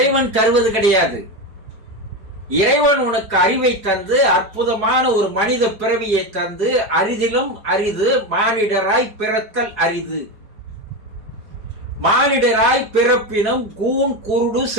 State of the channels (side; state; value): left; late; 4.7 ms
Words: தருவது கிடையாது. இறைவன் உனக்கு அறிவை தந்து, அற்புதமான ஒரு மனித பிறவியை தந்து, அரிதிலும் அரிது மானிடராய் பிறத்தல் அரிது. மானிடராய் பிறப்பினும் கூன் குருடு